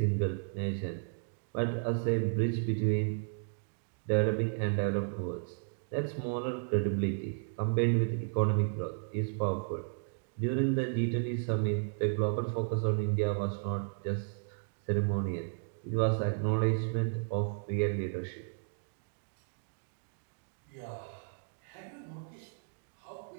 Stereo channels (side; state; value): left; silent; digital silence